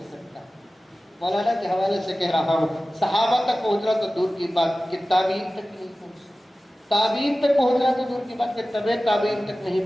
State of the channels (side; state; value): both; normal; correlation 0.96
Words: سکتا. مولانا کے حوالے سے کہہ رہا ہوں, صحابہ تک پہنچنا تو دور کی بات کہ تابعین تک نہیں پہنچ سکتا. تابعین تک پہنچنا تو دور کی بات کہ طبع تابعین تک